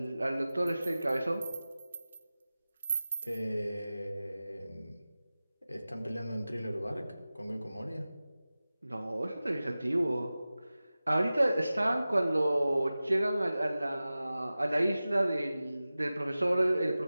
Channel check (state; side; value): inverted; both; correlation -0.96